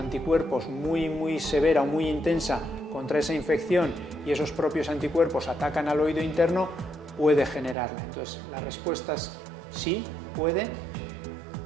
muy severa o muy intensa contra esa infección, y esos propios anticuerpos atacan al oído interno, puede generarla. Entonces, la respuesta es sí, puede,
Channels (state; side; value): drops out; left; at 7.8 s